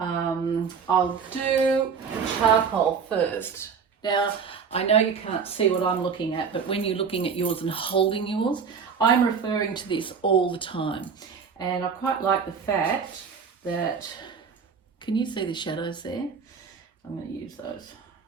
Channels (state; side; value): quieter; left; 6.1 dB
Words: do the charcoal first. Now, I know you can't see what I'm looking at, but when you're looking at yours and holding yours, I'm referring to this all the time. And I quite like the fact that, can you see the shadows there? I'm going to use those.